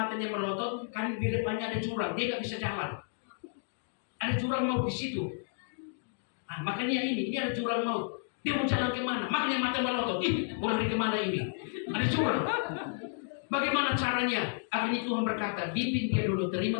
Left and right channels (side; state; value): right; silent; digital silence